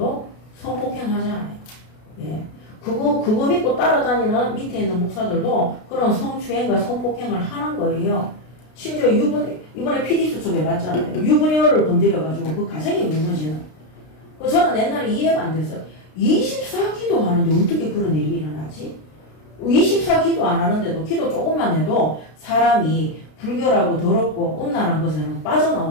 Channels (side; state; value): right; late; 33 ms